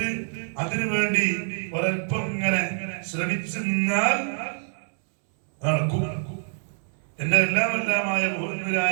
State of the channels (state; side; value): silent; left; digital silence